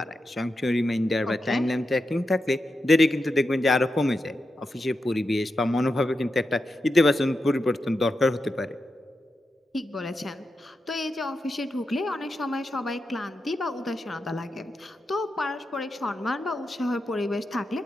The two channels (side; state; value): both; normal; correlation 0.88